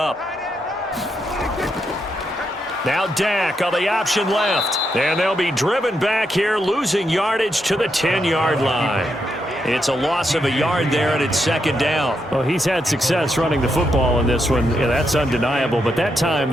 Now Dak on the option left. And they'll be driven back here, losing yardage to the 10-yard line. It's a loss of a yard there, and it's 2nd down. Well, he's had success running the football in this one. Yeah, that's undeniable. But that time,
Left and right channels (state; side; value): normal; both; correlation 0.81